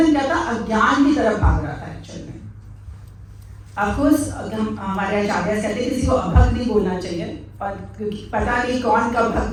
क्या था? अज्ञान की तरफ भाग रहा था एक्चुअल में। ऑफकोर्स हमारे आचार्य कहते हैं किसी को अभक्त नहीं बोलना चाहिए, पर क्योंकि पता नहीं कौन कब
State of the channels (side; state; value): both; identical; correlation 1.00